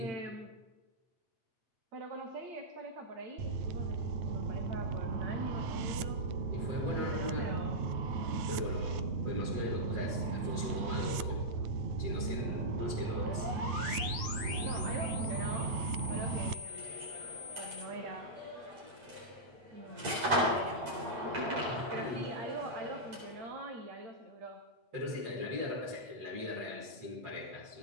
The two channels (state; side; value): late; left; 8.3 ms